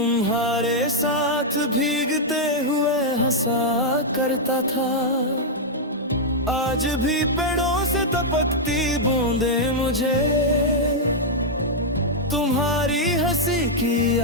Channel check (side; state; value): both; normal; correlation -0.05